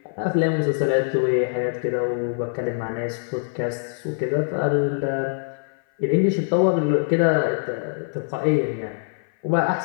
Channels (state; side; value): silent; right; 56 dB below the other